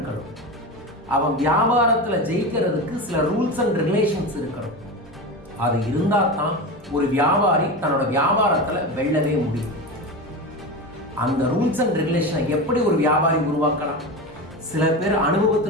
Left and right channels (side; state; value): both; normal; correlation 0.23